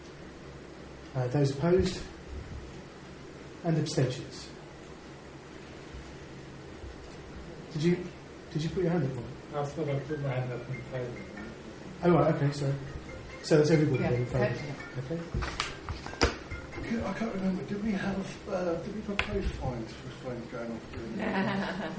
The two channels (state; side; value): identical; both; correlation 1.00